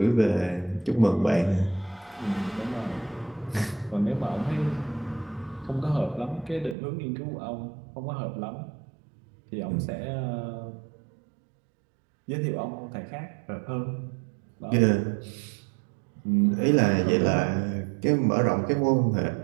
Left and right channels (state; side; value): drops out; left; at 6.8 s